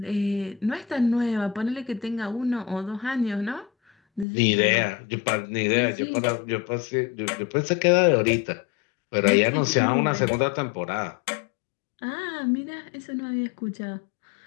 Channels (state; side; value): drops out; right; at 4.2 s